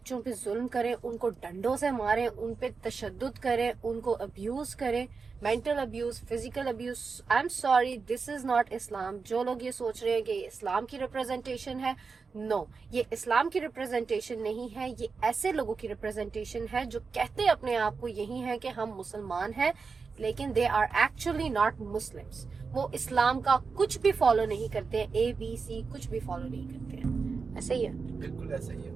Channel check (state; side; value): quieter; left; 4.9 dB